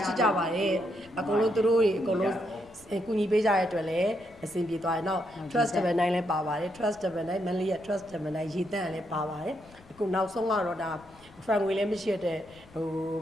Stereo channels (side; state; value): left; noise; rumble, 25 dB below the sound